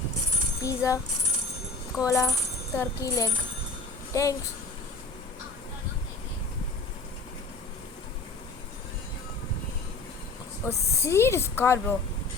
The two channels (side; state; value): right; quieter; 3.5 dB